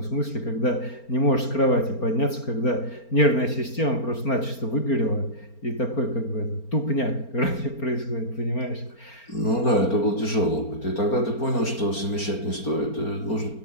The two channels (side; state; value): right; late; 4.4 ms